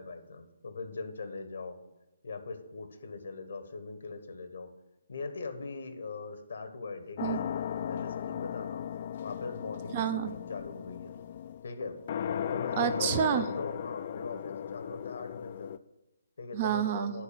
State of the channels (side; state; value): both; inverted; correlation -0.50